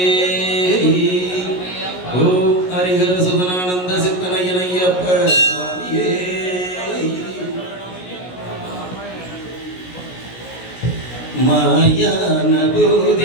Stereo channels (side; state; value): right; late; 17 ms